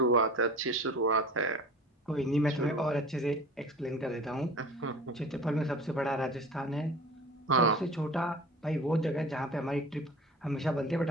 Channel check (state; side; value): normal; both; correlation 0.39